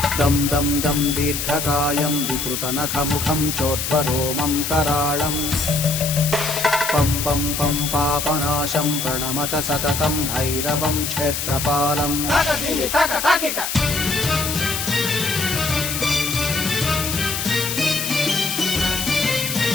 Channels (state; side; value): noise; left; hiss, 3 dB below the sound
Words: दं दं दं दीर्घकायं विकृतनखमुखं चोर्ध्वरोमं कराळम् पं पं पं पापनाशं प्रणमत सततं भैरवं क्षेत्रपालम्